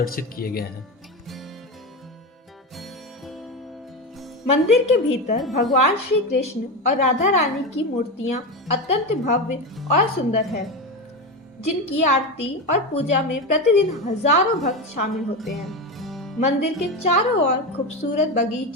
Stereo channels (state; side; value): normal; both; correlation 0.18